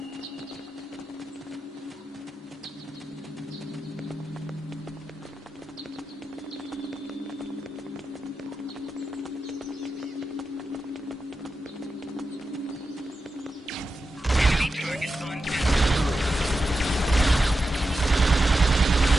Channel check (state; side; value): normal; both; correlation 0.90